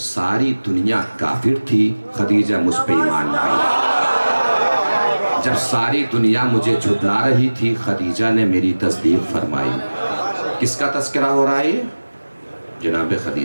دنیا کافر تھی خدیجہ مجھ پہ ایمان لائی، جب ساری دنیا مجھے جھٹلا رہی تھی خدیجہ نے میری تصدیق فرمائی۔ کس کا تذکرہ ہو رہا ہے؟ جناب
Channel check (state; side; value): inverted; both; correlation -1.00